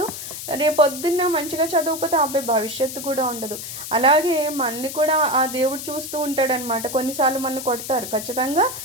రేపు పొద్దున్న మంచిగా చదవకపోతే ఆ అబ్బాయి భవిష్యత్తు కూడా ఉండదు. అలాగే మనల్ని కూడా ఆ దేవుడు చూస్తూ ఉంటాడనమాట. కొన్నిసార్లు మనల్ని కొడతారు, ఖచ్చితంగా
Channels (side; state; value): left; noise; hiss, 9 dB below the sound